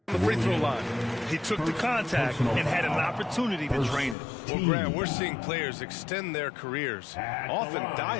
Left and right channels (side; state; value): right; drops out; at 4.2 s